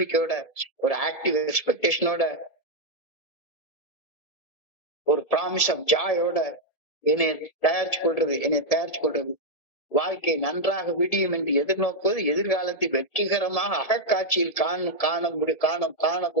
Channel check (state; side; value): late; right; 1.7 ms